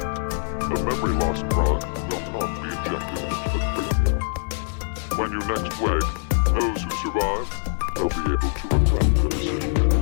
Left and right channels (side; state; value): right; silent; 63 dB below the other